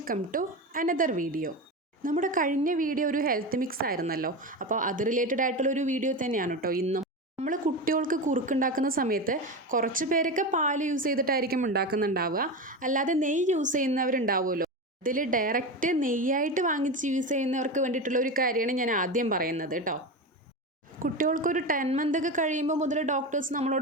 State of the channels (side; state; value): both; normal; correlation 0.21